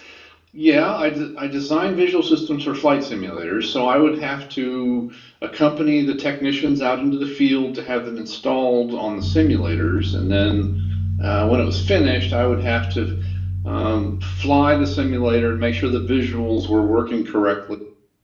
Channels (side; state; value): both; identical; correlation 1.00